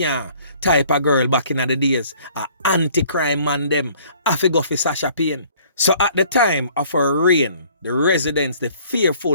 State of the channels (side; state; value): both; inverted; correlation -0.56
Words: type of girl back in the days. A anti-crime man them, I go for Sasha Payne. So at the time of her reign, the residents, the